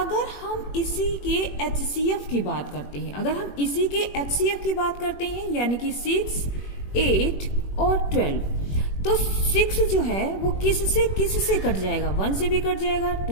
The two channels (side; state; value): right; late; 21 ms